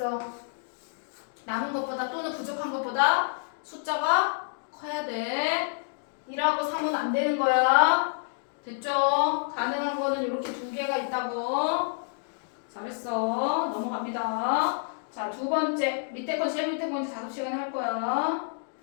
남은 것보다 또는 부족한 것보다 숫자가 커야 돼. 1하고 3은 안 되는 거야. 됐죠? 가능한 거는 이렇게 두 개가 있다고. 잘했어. 넘어갑니다. 자, 두 번째. 밑에 거 제일 밑에 거 이제 작업 시간에 할 거야.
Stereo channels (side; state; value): right; silent; digital silence